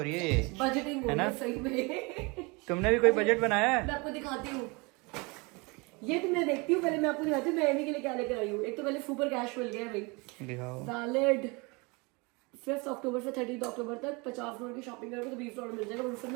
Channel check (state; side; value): quieter; left; 27.8 dB